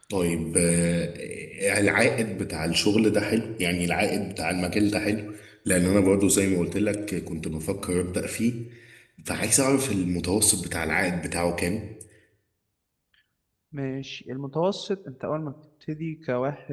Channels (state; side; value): identical; both; correlation 1.00